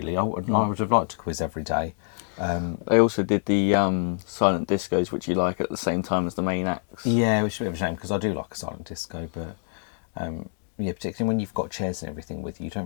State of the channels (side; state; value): right; silent; digital silence